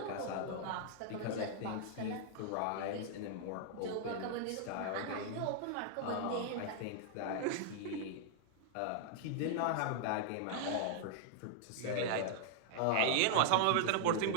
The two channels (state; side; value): different; both; correlation -0.01